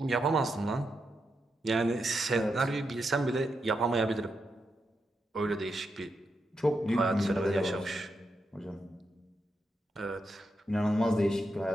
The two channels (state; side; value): normal; both; correlation 0.85